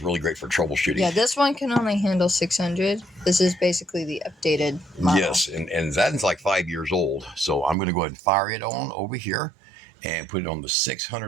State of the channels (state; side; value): drops out; left; at 7.8 s